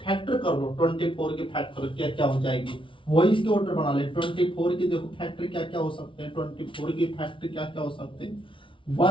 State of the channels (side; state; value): right; late; 0.25 ms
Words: फैक्टर कर लो, 24 के फैक्टर क्या क्या हो जाएगी वही इसके ऑर्डर बना ले। 24 के देखो फैक्टर क्या क्या हो सकते हैं, 24 के फैक्टर क्या क्या हो सकते हैं